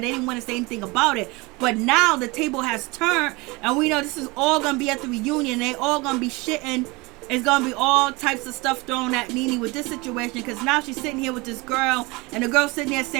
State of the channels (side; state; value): left; quieter; 24.7 dB